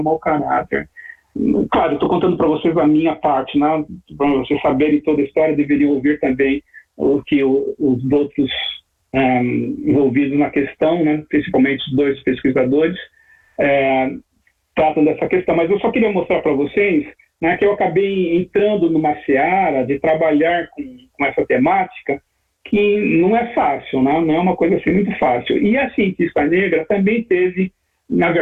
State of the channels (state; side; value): identical; both; correlation 1.00